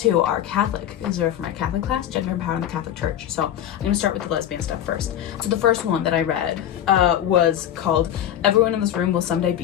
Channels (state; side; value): quieter; right; 11.0 dB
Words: 2 are Catholic, because they're for my Catholic class, Gender and Power in the Catholic Church. So I'm gonna start with the lesbian stuff first. So the first one that I read was called Everyone in This Room Will Someday